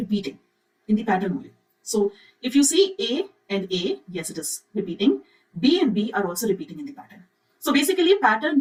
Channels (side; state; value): both; identical; correlation 1.00